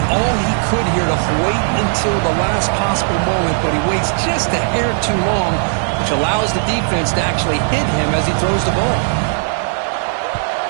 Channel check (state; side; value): silent; left; 68 dB below the other